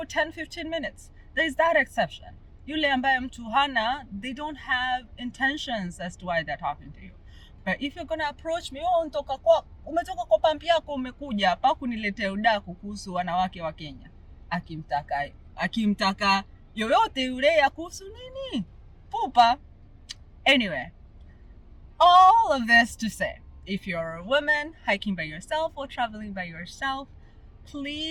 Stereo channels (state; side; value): identical; both; correlation 1.00